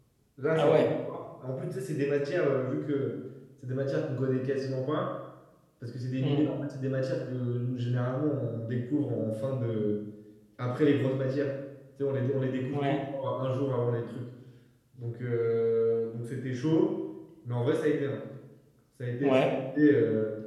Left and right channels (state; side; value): identical; both; correlation 1.00